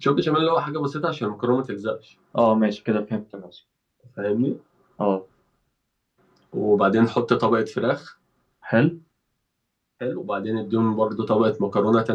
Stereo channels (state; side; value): identical; both; correlation 1.00